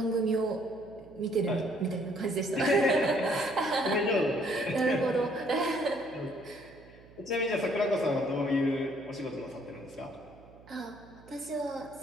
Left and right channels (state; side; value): noise; right; hum, 23 dB below the sound